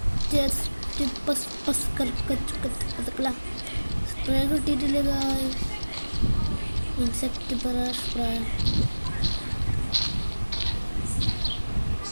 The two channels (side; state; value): both; inverted; correlation -1.00